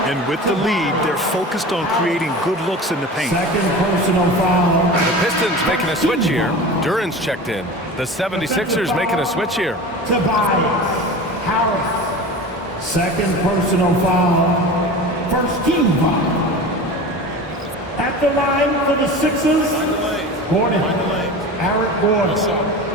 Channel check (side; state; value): both; normal; correlation 0.33